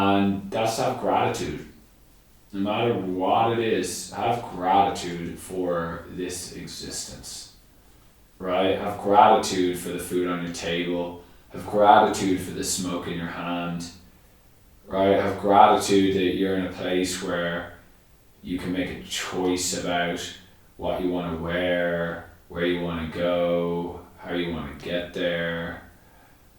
that's to have gratitude. No matter what it is, have gratitude for this existence, right? Have gratitude for the food on your table. Have gratitude for the smoke in your hand, right? Have gratitude that you're in a place where you can make a choice about what you want to wear, where you want to go, how you want to get there,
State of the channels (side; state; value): both; identical; correlation 1.00